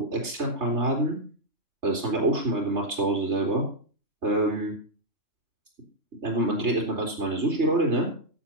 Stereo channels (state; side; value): late; left; 3.3 ms